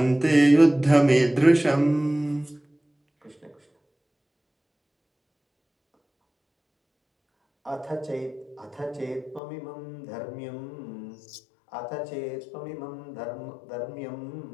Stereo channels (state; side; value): drops out; right; at 9.4 s